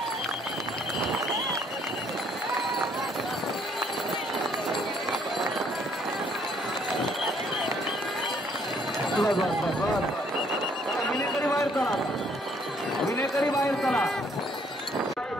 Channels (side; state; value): both; normal; correlation 0.65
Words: विनेकरी बाहेर चला. विनेकरी बाहेर चला.